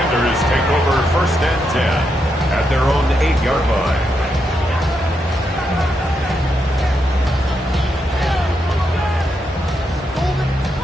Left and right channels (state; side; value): normal; both; correlation 0.82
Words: take over 1st and 10 at their own 8-yard line.